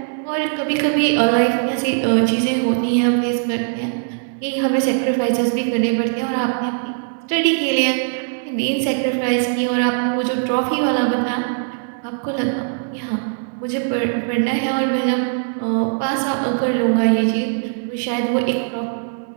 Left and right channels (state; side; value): silent; left; digital silence